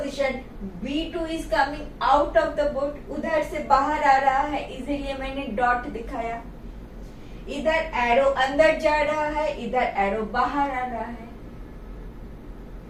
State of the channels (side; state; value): both; identical; correlation 1.00